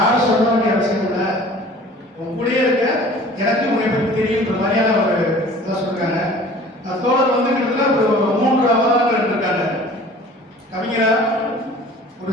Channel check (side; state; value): both; normal; correlation 0.46